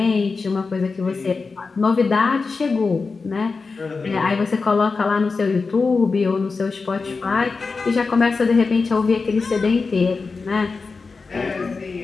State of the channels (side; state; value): right; quieter; 4.4 dB